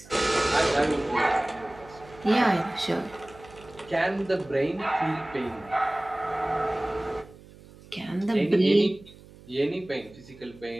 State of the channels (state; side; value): noise; right; hum, 21 dB below the sound